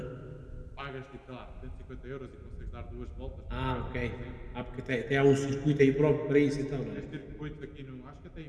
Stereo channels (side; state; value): both; identical; correlation 1.00